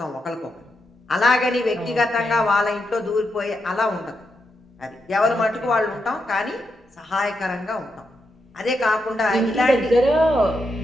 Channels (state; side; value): normal; both; correlation 0.84